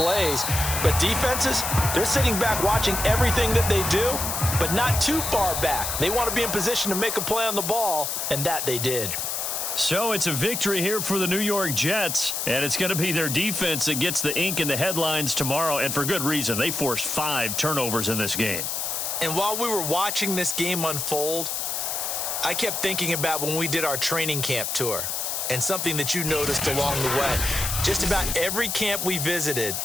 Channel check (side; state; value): left; noise; hiss, 2 dB below the sound